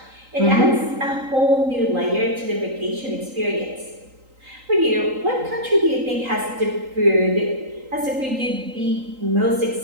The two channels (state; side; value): late; left; 3.8 ms